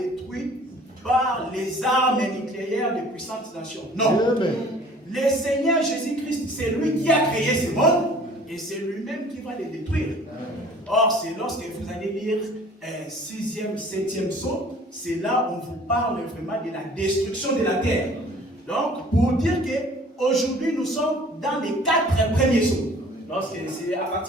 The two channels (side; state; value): both; normal; correlation 0.51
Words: par les armes nucléaires des puissantes nations. Non. Le Seigneur Jésus-Christ, c'est lui qui a créé ce monde et c'est lui-même qui va les détruire. Or, c'est lorsque vous allez lire 6e, 7e psaume, c'est là où on vous parle vraiment de la destruction de la terre. Donc, pour dire qu'aujourd'hui, nous sommes dans les 4 premiers psaumes. Donc, c'est à